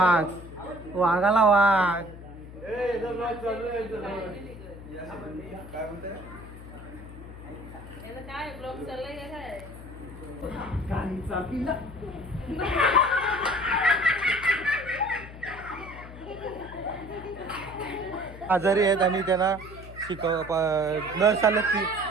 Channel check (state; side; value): noise; left; hum, 14 dB below the sound